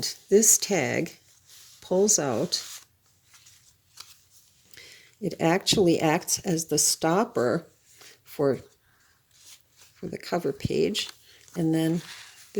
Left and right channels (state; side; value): identical; both; correlation 1.00